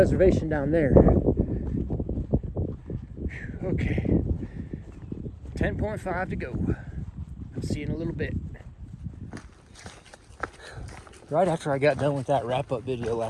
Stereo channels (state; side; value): identical; both; correlation 1.00